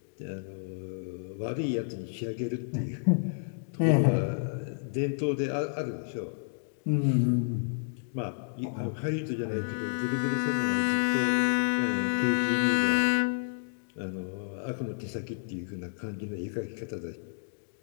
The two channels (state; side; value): silent; right; digital silence